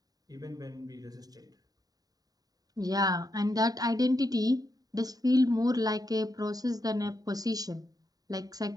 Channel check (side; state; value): left; late; 0.18 ms